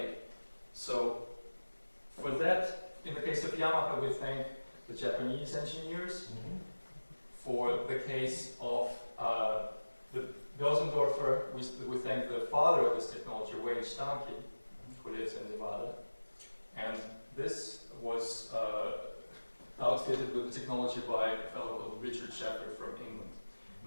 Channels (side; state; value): both; inverted; correlation -1.00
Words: So for that, in the case of Yamaha, we thank the Japanese engineers. For the case of the Bösendorfer, we thank the father of this technology, Wayne Stahnke, who lives in Nevada. And this was outfitted with the technology by a fellow called Richard Shepard from England.